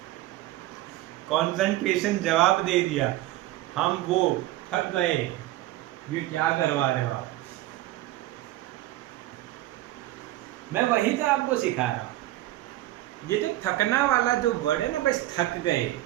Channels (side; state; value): left; quieter; 16.0 dB